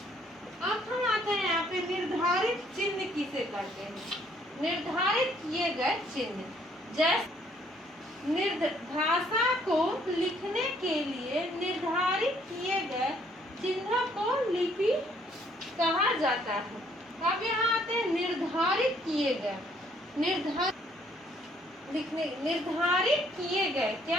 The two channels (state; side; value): normal; both; correlation 0.65